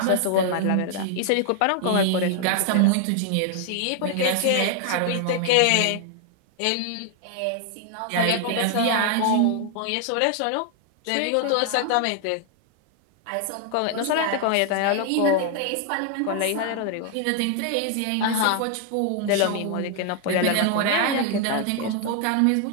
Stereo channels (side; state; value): both; different; correlation 0.00